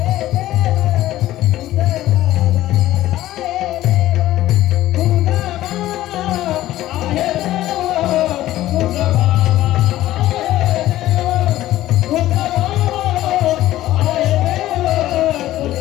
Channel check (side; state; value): right; quieter; 14.7 dB